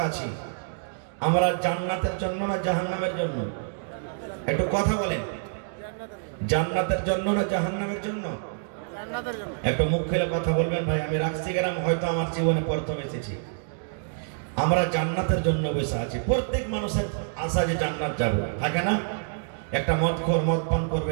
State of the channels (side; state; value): left; silent; digital silence